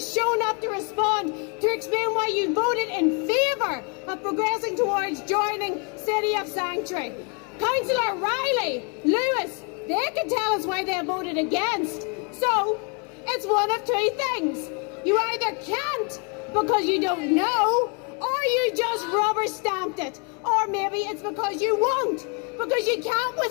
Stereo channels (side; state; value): right; quieter; 34.0 dB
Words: shown up to respond to explain why you voted in favour of progressing towards joining City of Sanctuary. Councillor Riley, Lewis, they can tell us why they voted against. So, it's one of two things. You either can't because you don't know, or you just rubber stamped it. Or maybe it's because you won't, because you can't